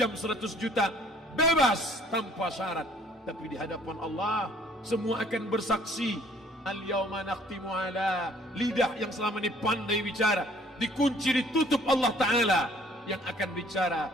100 juta, bebas tanpa syarat. Tapi di hadapan Allah semua akan bersaksi. Al-yawma nakhtimu ala, lidah yang selama ini pandai bicara dikunci, ditutup Allah Ta'ala yang akan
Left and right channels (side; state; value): both; normal; correlation 0.58